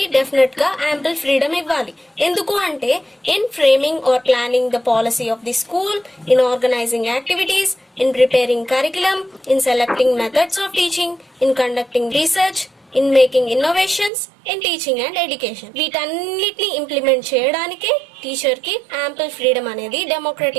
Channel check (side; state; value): left; drops out; at 14.1 s